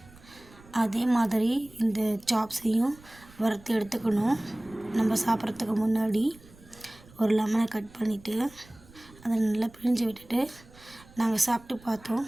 அதே மாதிரி இந்த சாப்ஸையும் வறுத்து எடுத்துக்கணும். நம்ம சாப்பிட்றதுக்கு முன்னாடி ஒரு லெமனை கட் பண்ணிவிட்டு அதை நல்லா பிழிஞ்சு விட்டுட்டு நாங்கள் சாப்பிட்டு பார்த்தோம்.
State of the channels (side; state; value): right; noise; rumble, 24 dB below the sound